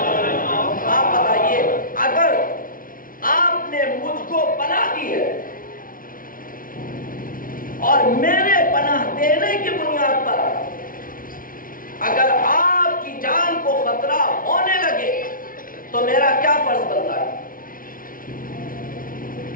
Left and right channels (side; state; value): right; late; 0.40 ms